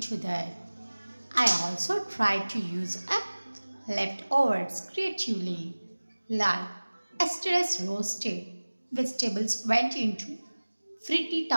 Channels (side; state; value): both; inverted; correlation -1.00